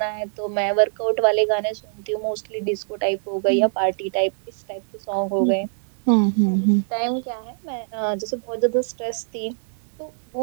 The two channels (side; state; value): left; silent; digital silence